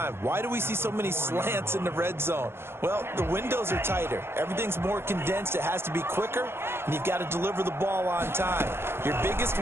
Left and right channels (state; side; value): late; left; 0.12 ms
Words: Why do we see so many slants in the red zone? Well, the windows are tighter. Everything's more condensed. It has to be quicker, and you've got to deliver the ball on time. Your biggest